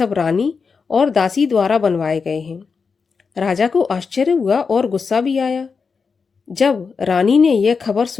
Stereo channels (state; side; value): quieter; right; 5.2 dB